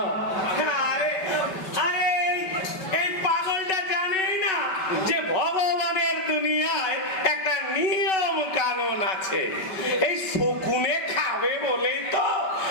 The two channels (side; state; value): right; late; 5.3 ms